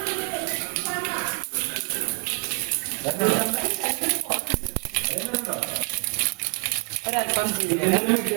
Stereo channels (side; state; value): left; quieter; 36.4 dB